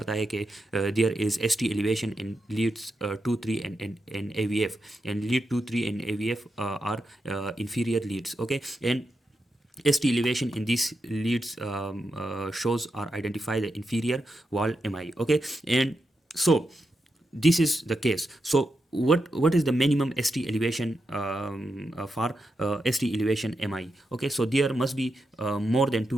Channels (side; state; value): both; normal; correlation 0.86